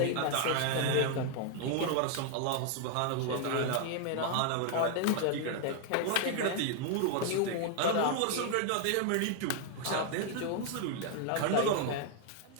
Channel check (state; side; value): different; both; correlation 0.00